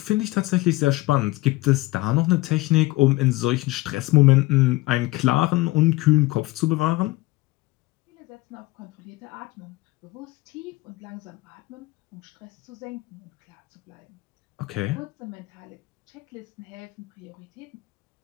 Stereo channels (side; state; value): right; quieter; 20.0 dB